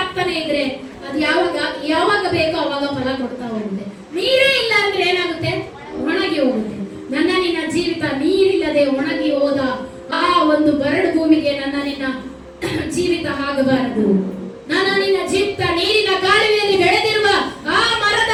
ಇದ್ರೆ ಅದು ಯಾವಾಗ ಬೇಕೋ ಅವಾಗ ಫಲ ಕೊಡ್ತಾ ಹೋಗುತ್ತೆ. ನೀರೇ ಇಲ್ಲ ಅಂದ್ರೆ ಏನಾಗುತ್ತೆ? ಒಣಗಿ ಹೋಗುತ್ತೆ. ನನ್ನ ನಿನ್ನ ಜೀವಿತ ನೀರಿಲ್ಲದೆ ಒಣಗಿ ಹೋದ ಆ ಒಂದು ಬರಡು ಭೂಮಿಗೆ ನನ್ನ ನಿನ್ನ ಜೀವಿತ ಆಗಬಾರದು. ನನ್ನ ನಿನ್ನ ಜೀವಿತ ನೀರಿನ ಕಾಲುವೆಯಲ್ಲಿ ಬೆಳೆದಿರುವ ಆ ಮರದ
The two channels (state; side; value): identical; both; correlation 1.00